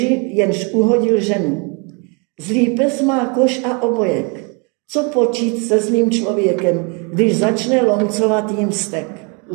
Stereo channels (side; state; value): left; quieter; 33.9 dB